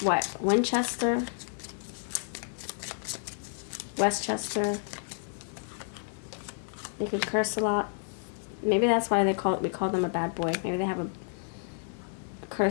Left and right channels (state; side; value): silent; right; 57 dB below the other